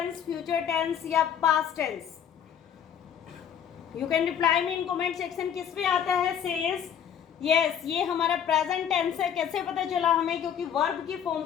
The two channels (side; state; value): right; quieter; 8.7 dB